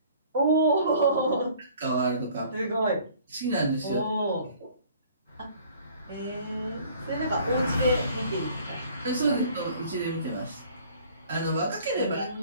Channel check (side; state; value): both; inverted; correlation -0.53